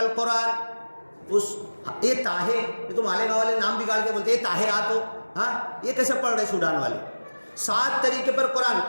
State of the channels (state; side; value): inverted; both; correlation -1.00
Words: اس یہ طاہے, یہ تو مالیگاؤں والے نام بگاڑ کے بولتے ہیں طاہے آ تو, ہاں یہ کیسے پڑھ رہے سوڈان والے؟ 7 طریقے پر قرآن.